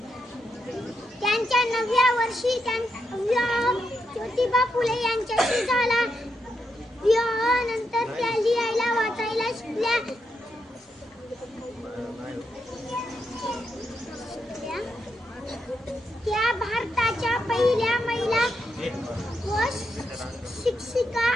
त्यांच्या 9व्या वर्षी विवाह ज्योतिबा फुले यांच्याशी झाला. विवाहानंतर त्या लिहायला वाचायला शिकल्या. त्या भारताच्या पहिल्या महिला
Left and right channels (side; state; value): both; normal; correlation 0.82